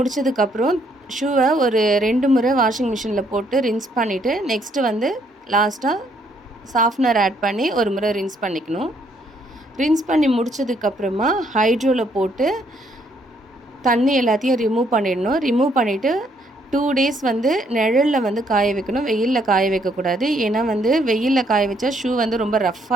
ஷூவை ஒரு 2 முறை வாஷிங் மிஷினில் போட்டு ரின்ஸ் பண்ணிவிட்டு நெக்ஸ்ட்டு லாஸ்ட்டாக சாஃப்ட்னர் ஆட் பண்ணி ஒரு முறை ரின்ஸ் பண்ணிக்கணும். ரின்ஸ் பண்ணி முடித்ததுக்கப்புறமா ஹைட்ரோவில் போட்டு தண்ணி எல்லாத்தையும் ரிமூவ் பண்ணிடணும். ரிமூவ் பண்ணிவிட்டு 2 டேஸ் நிழலில் காய வைக்கணும். வெயிலில் காய வைக்கக்கூடாது. ஏன்னா வெயிலில் காய வச்சா ஷூ ரொம்ப ரஃப்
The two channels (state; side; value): normal; both; correlation 0.69